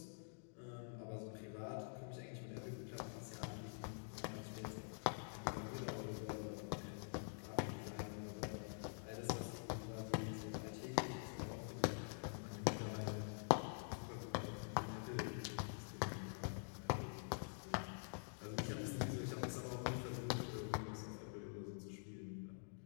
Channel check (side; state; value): right; silent; digital silence